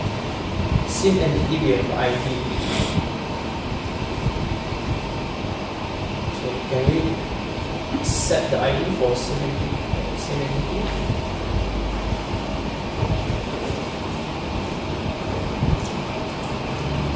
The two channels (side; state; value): both; identical; correlation 1.00